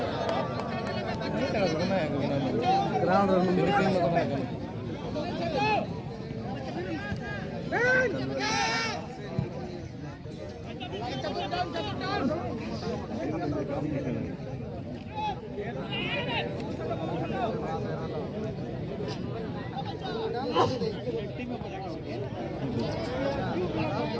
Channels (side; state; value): both; identical; correlation 1.00